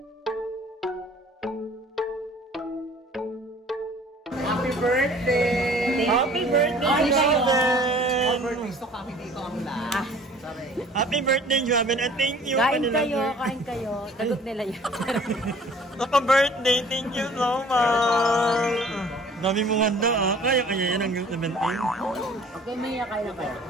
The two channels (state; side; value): normal; both; correlation 0.51